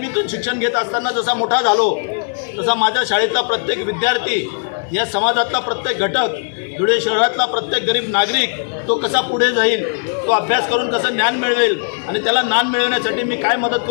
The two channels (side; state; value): right; silent; digital silence